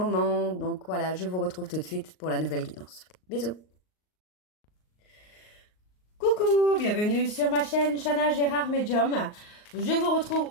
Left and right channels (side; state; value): right; late; 38 ms